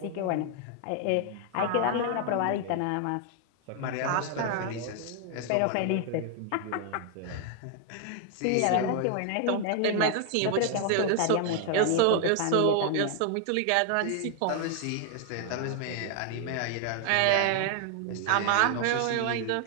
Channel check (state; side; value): different; both; correlation 0.00